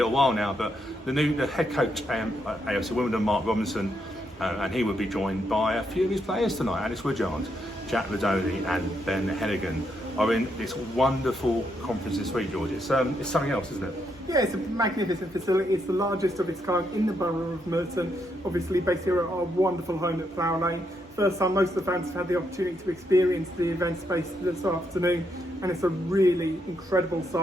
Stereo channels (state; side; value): normal; both; correlation 0.78